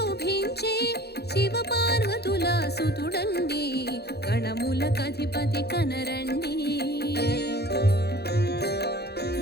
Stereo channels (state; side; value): late; right; 0.47 ms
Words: శివ పార్వతుల సుతుడండి గణములకధిపతి కనరండి